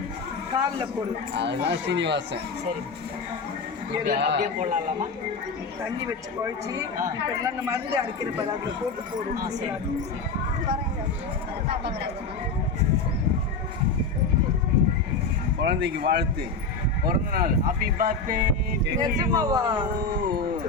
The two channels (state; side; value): quieter; right; 4.1 dB